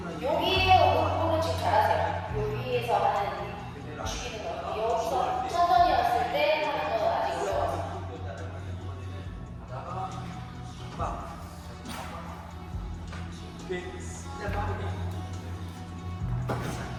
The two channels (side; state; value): both; identical; correlation 1.00